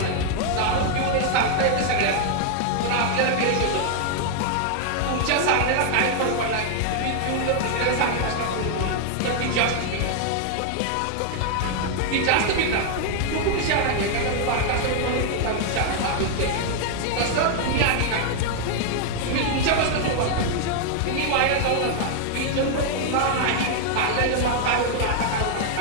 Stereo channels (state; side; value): different; both; correlation 0.00